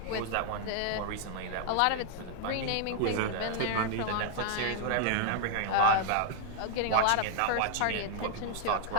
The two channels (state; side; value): different; both; correlation 0.00